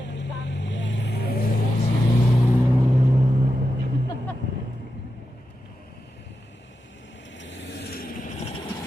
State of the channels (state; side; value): normal; both; correlation 0.89